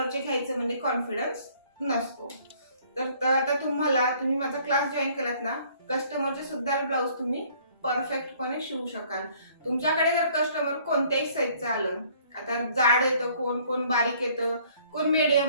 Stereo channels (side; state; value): both; inverted; correlation -0.59